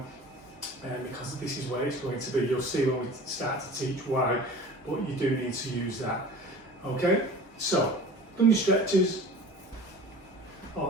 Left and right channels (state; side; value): normal; both; correlation 0.40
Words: because this is where it's going to be. You'll see when we start to teach why, but you do need to use that. Okay, so done your stretches,